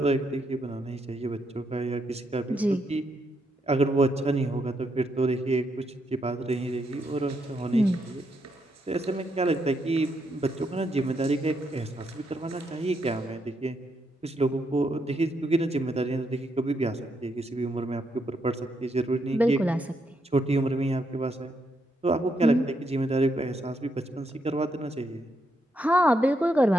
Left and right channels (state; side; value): normal; both; correlation 0.78